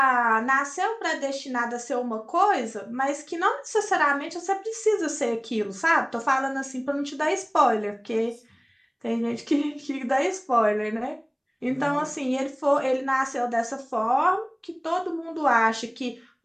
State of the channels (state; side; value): identical; both; correlation 1.00